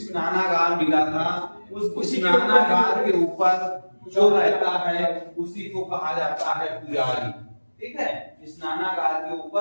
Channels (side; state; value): both; inverted; correlation -1.00